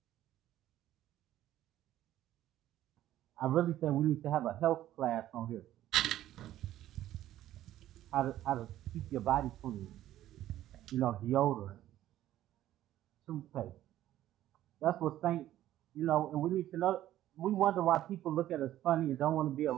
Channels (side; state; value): left; quieter; 13.3 dB